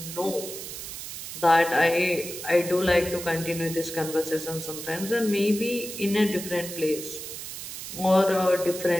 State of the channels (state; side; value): noise; right; hiss, 9 dB below the sound